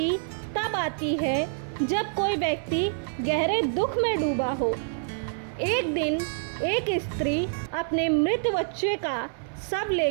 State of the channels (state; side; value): silent; left; digital silence